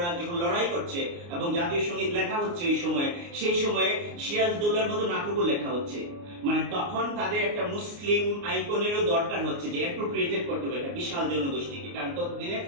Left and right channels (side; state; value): left; late; 29 ms